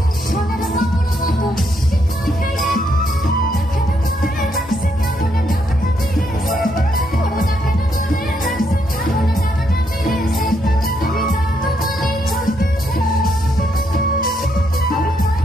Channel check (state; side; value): normal; both; correlation 0.76